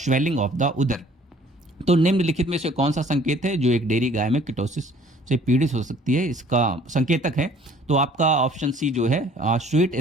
of the udder. तो निम्नलिखित में से कौन सा संकेत है जो एक डेयरी गाय में कीटोसिस से पीड़ित हो सकती है, इसका संकेतक है? तो आपका ऑप्शन सी जो है स्वीट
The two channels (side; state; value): both; normal; correlation 0.55